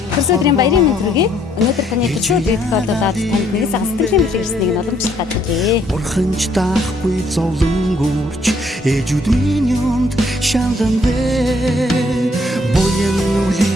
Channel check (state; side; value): normal; both; correlation 0.67